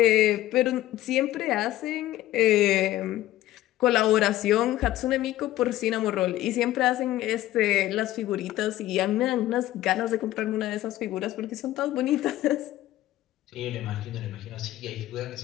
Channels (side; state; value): right; quieter; 14.8 dB